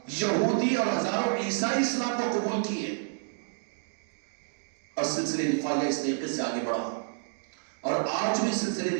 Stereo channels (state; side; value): silent; left; digital silence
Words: یہودی اور ہزاروں عیسائی اسلام کو قبول کیے، اور سلسلے رفاعیہ اس طریقے سے آگے بڑھا. اور آج بھی سلسلے